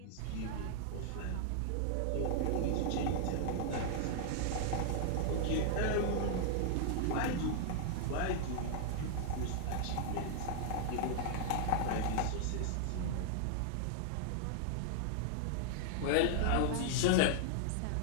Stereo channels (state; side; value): different; both; correlation -0.01